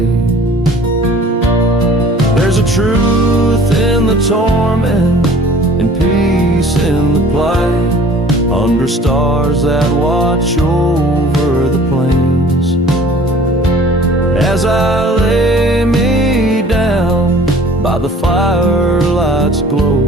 There's a truth in the torment and peace in the plight, under stars that watch over the plains. As I lay me down by the firelight's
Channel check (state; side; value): normal; both; correlation 0.50